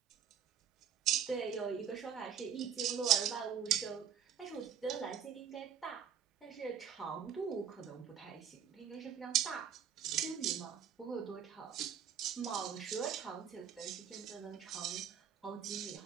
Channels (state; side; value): quieter; left; 8.2 dB